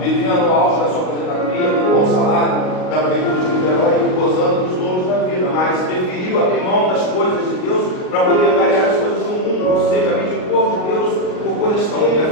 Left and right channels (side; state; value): right; late; 38 ms